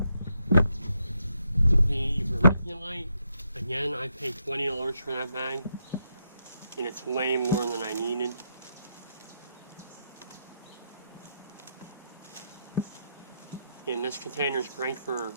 The vermiculite, again, I paid $20 for that bag, and it's way more than I needed. And this container is great for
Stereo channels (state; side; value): inverted; both; correlation -0.80